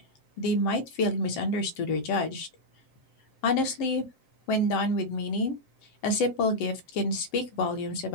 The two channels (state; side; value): late; right; 7.6 ms